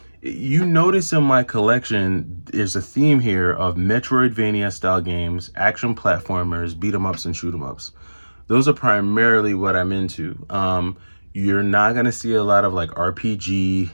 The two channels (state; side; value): inverted; both; correlation -1.00